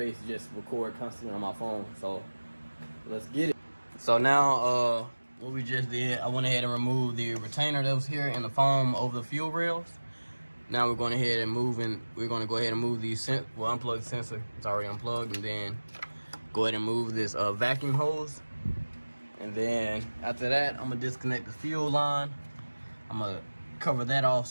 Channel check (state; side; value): inverted; both; correlation -1.00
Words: to just record constantly on my phone. So let's get it. So now what we just did, I went ahead and removed the retainer that was here in the foam over the fuel rails. Now we're going ahead and move these unplug the sensor. It's already unplugged, and then go ahead and move this vacuum hose. And then after that, I'm gonna disconnect the fuel line. I'm gonna cover that off